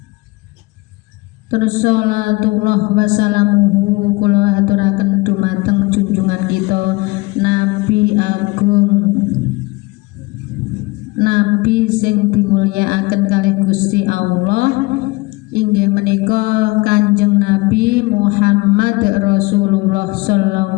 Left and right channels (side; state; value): right; quieter; 23.9 dB